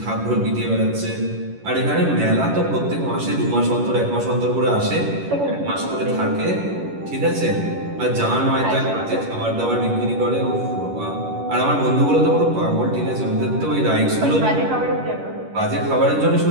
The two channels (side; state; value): left; late; 11 ms